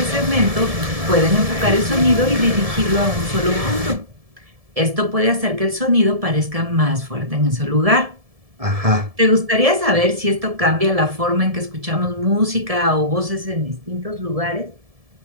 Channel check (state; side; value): late; left; 1.7 ms